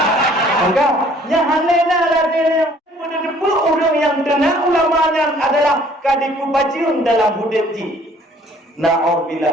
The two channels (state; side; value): normal; both; correlation 0.57